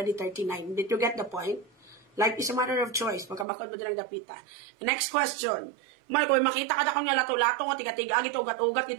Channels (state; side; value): drops out; left; at 3.5 s